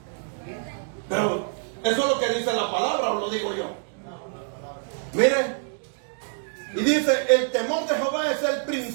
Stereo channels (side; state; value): left; silent; digital silence